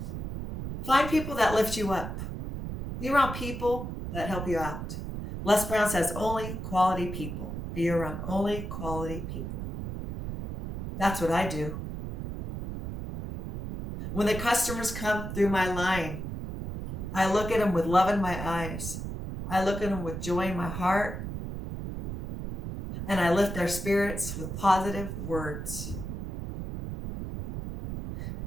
Find people that lift you up. Be around people that help you out. Les Brown says only quality people. Be around only quality people. That's what I do. When the customers come through my line, I look at them with love in my eyes. I look at them with joy in my heart. And I lift their spirits with positive words.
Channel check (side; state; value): right; noise; rumble, 6 dB below the sound